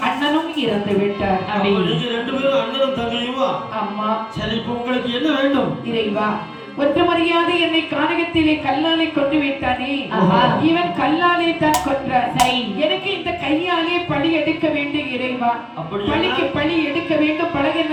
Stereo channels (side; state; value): both; identical; correlation 1.00